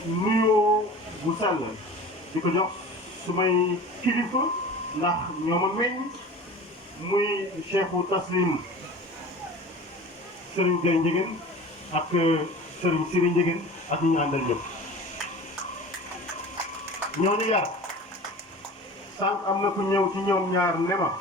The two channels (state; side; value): normal; both; correlation 0.38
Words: nuyoo bu sell di ko jox su may kilifa ndax ñoo ma meññ muy cheikhu taslim Serigne Gueye Ndiéguène ak Serigne Siri Ndiéguène ak ñi ñu àndal ñëpp ñooñu yar sànq am na ku ñëw ci ñoom ñaar ne ma